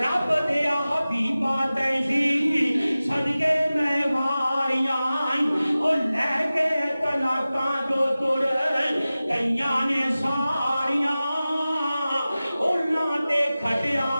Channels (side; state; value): both; inverted; correlation -0.96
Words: رب دیا حبیبہ تیزی صدقے میں واریاں، اور لے کے طلاقاں جو تر کئیاں نے ساریاں، اور لاتے کھٹیا